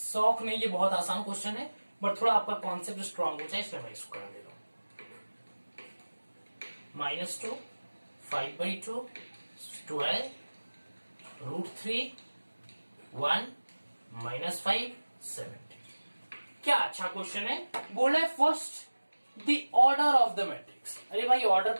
नहीं, ये बहुत आसान क्वेश्चन है, बट थोड़ा आपका कॉन्सेप्ट स्ट्रांग हो जाए इसलिए मैं इसको करा दे रहा हूं। -2 5/2 12 √3 1 -5 70। क्या अच्छा क्वेश्चन है। बोला है first the order of the matrix. अरे भाई, ऑर्डर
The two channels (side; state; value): both; inverted; correlation -1.00